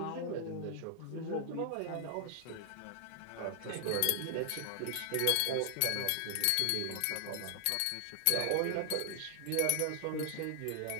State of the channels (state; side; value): different; both; correlation 0.00